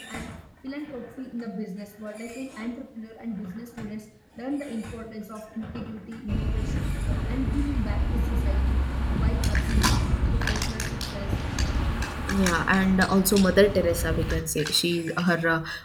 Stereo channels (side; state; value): both; identical; correlation 1.00